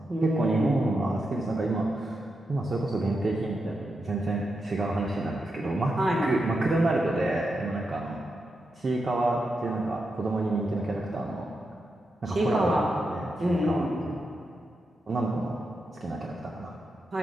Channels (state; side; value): normal; both; correlation 0.86